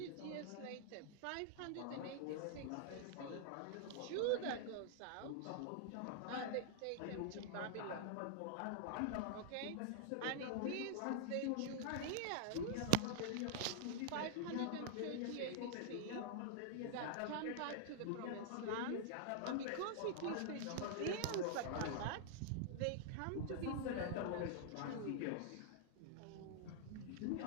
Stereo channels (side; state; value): both; different; correlation -0.01